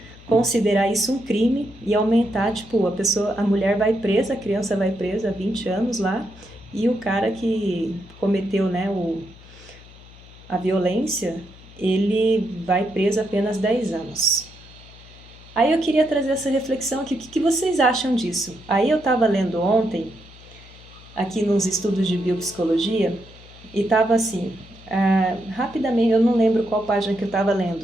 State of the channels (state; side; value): noise; left; hum, 21 dB below the sound